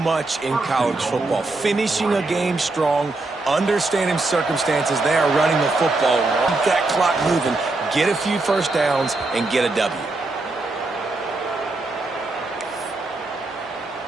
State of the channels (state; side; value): quieter; left; 3.2 dB